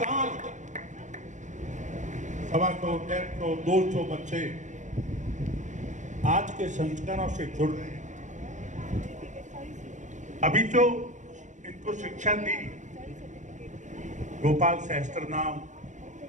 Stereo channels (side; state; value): left; late; 0.35 ms